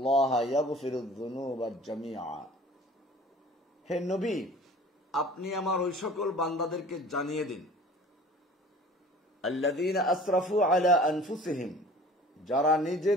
يغفر الذنوب جميعا। হে নবী, আপনি আমার ওই সকল বান্দাদেরকে জানিয়ে দিন, আল্লাযীনা আসরাফু আলা আনফুসিহিম, যারা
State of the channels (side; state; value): both; normal; correlation 0.46